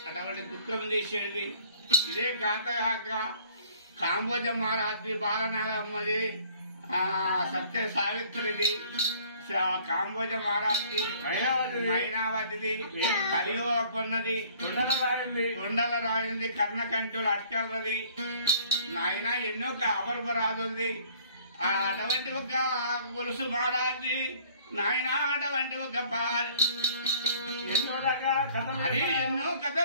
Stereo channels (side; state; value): both; inverted; correlation -0.56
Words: అటువంటి దుఃఖం తీసేది ఇదే కాక కాంబోజ మహారాజు బాలనాగమ్మది సత్య సావిత్రిది కాంబోజ మహారాజు మైనావతిది కలియుగన్నది కొండల రాయింది కర్ణకంఠులు అట్కలది నాయన ఎన్నో అపరూపరాజుంది అటువంటి ఒక గొలుసు మహారాజు నాయన అటువంటి ఒక అది ఎన్నో